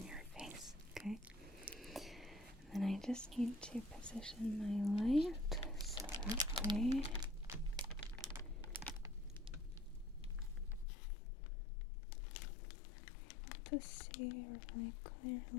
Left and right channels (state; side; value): drops out; right; at 10.9 s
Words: your face, okay? And then I just need to position my light so that way I'm able to see really